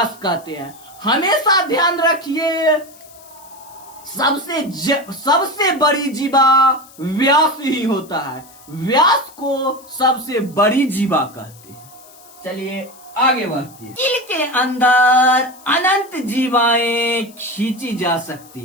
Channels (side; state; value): left; noise; hiss, 23 dB below the sound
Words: कहते हैं। हमेशा ध्यान रखिए, सबसे बड़ी जीवा व्यास ही होता है। व्यास को सबसे बड़ी जीवा कहते हैं। चलिए आगे बढ़ते हैं। दिल के अंदर अनंत जीवाएं खींची जा सकती